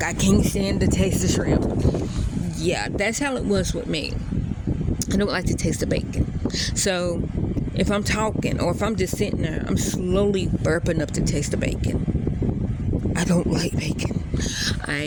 I can't stand the taste of shrimp. Yeah, that's how it was with me. I don't like the taste of bacon. So if I'm talking or if I'm just sitting there, I'm slowly burping up the taste of bacon. I don't like bacon.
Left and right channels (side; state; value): both; identical; correlation 1.00